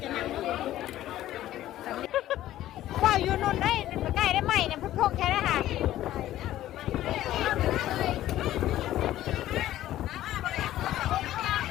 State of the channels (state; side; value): quieter; right; 13.7 dB